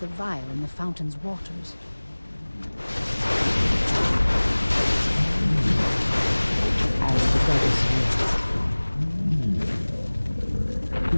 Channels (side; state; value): both; inverted; correlation -1.00